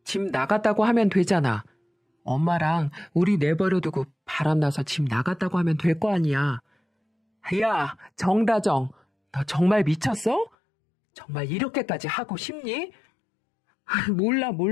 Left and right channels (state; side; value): drops out; right; at 10.5 s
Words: 집 나갔다고 하면 되잖아. 엄마랑 우리 내버려두고 바람나서 집 나갔다고 하면 될 거 아니야. 야, 정다정, 너 정말 미쳤어? 정말 이렇게까지 하고 싶니?